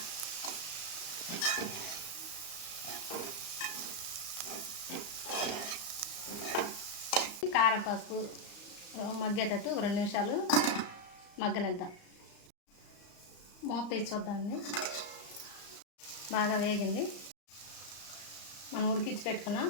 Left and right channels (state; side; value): late; right; 34 ms